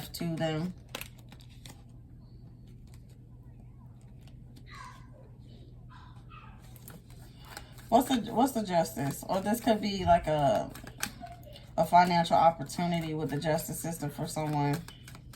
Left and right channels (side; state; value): both; identical; correlation 1.00